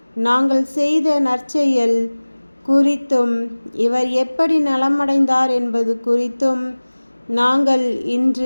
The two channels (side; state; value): both; inverted; correlation -1.00